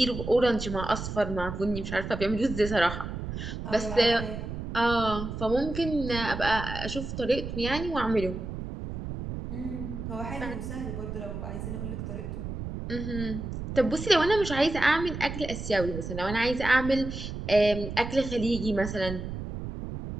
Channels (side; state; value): right; noise; rumble, 7 dB below the sound